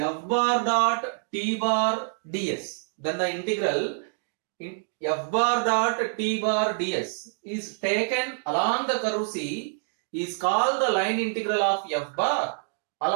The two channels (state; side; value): silent; left; digital silence